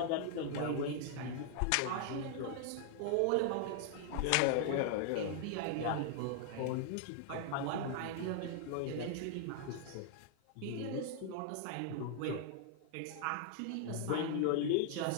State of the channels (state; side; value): different; both; correlation 0.00